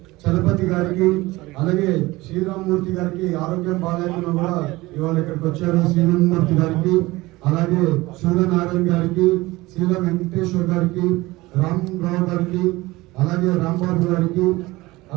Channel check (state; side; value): quieter; left; 20.2 dB